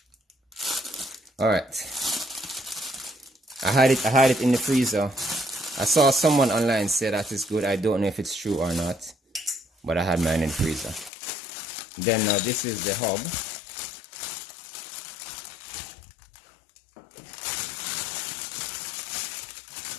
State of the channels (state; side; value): drops out; right; at 11.1 s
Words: All right. I had it in the freezer. I saw someone online say that it's good. I don't know if it's true or not, but I had mine in the freezer. Then now this is the hub.